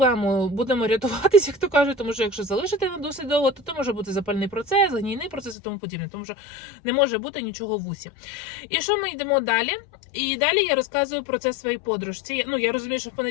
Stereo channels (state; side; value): drops out; right; at 5.6 s